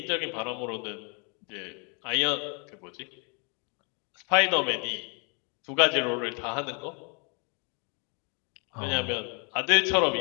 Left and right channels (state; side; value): quieter; right; 34.9 dB